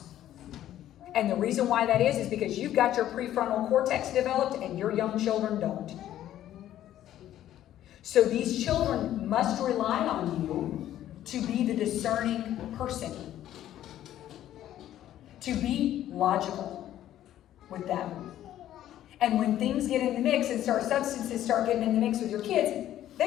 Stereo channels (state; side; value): quieter; right; 12.3 dB